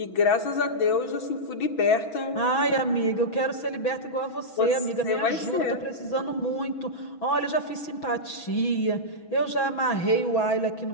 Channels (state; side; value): late; right; 6.1 ms